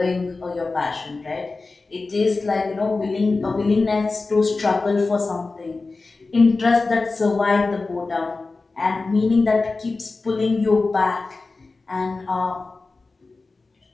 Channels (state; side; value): quieter; right; 3.7 dB